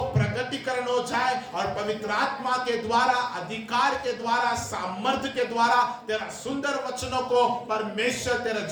प्रगटीकरण हो जाए और पवित्र आत्मा के द्वारा, अधिकार के द्वारा, सामर्थ्य के द्वारा तेरा सुंदर वचनों को परमेश्वर तेरे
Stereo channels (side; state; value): both; identical; correlation 1.00